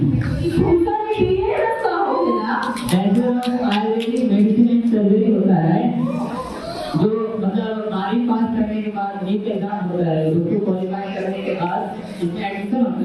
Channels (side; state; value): both; identical; correlation 1.00